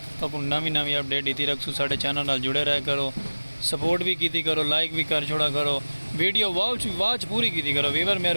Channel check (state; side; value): inverted; both; correlation -1.00